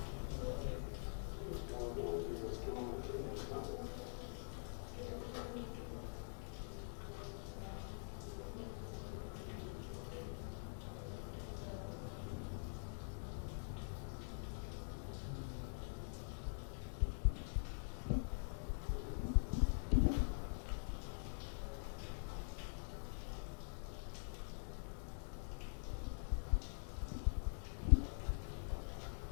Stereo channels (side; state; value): right; silent; digital silence